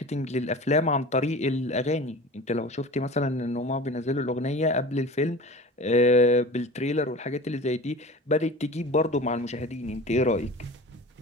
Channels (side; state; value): both; normal; correlation 0.37